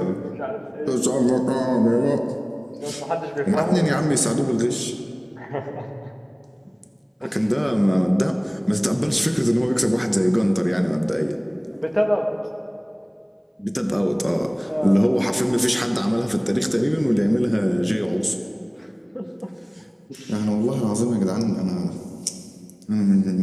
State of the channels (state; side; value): identical; both; correlation 1.00